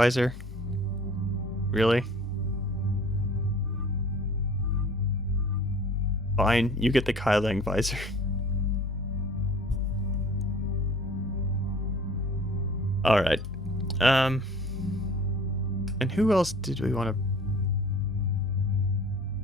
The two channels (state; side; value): normal; both; correlation 0.48